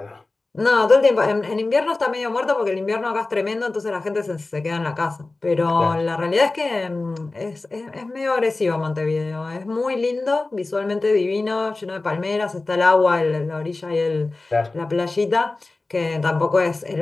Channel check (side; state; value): right; quieter; 3.3 dB